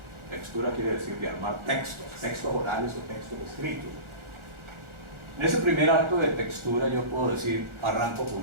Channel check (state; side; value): late; left; 1.4 ms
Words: textura quiere decir de armar textos orales o textos escritos. En ese primer acto de textura yo puedo decir, arranco